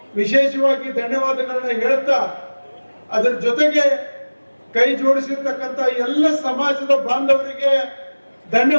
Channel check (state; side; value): inverted; both; correlation -1.00